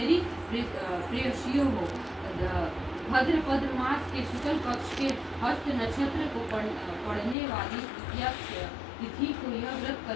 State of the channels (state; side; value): drops out; right; at 7.4 s